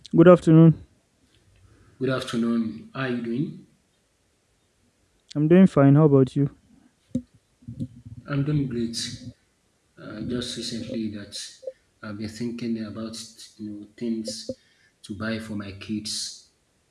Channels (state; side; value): identical; both; correlation 1.00